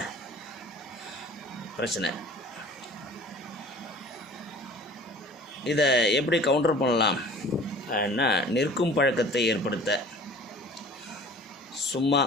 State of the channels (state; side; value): normal; both; correlation 0.45